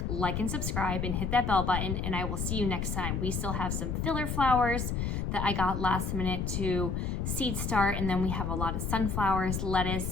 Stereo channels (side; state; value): left; noise; rumble, 1 dB below the sound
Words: like and subscribe and hit that bell button, and I will see you next time. We still have some filler flowers that I got last minute to seed start, and then we have a lot of sunflowers,